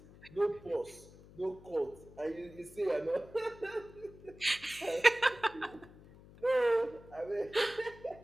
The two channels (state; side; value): noise; left; hum, 21 dB below the sound